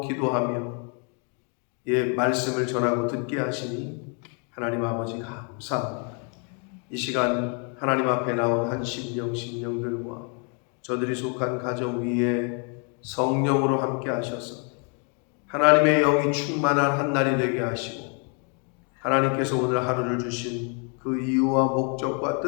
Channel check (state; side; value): quieter; right; 38.5 dB